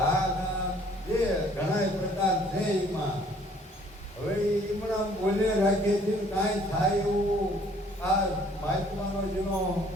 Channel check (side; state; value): both; normal; correlation 0.58